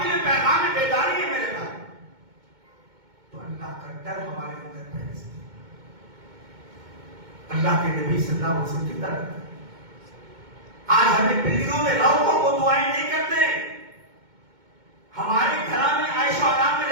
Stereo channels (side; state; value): left; late; 2.2 ms